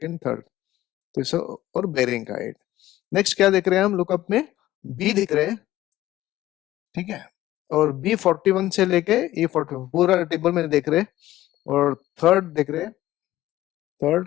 थर्ड, तो इसे और बेरिंग का है. नेक्स्ट क्या देख रहे हैं हम लुकअप में, बी दिख रहे हैं, ठीक है. और B41 से लेके E44 पूरा टेबल में देख रहे हैं. और थर्ड देख रहे हैं,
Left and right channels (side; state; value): right; quieter; 15.1 dB